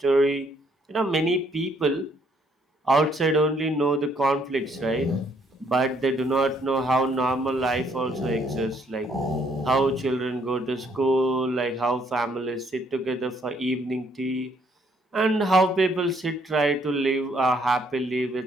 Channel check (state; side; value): normal; both; correlation 0.68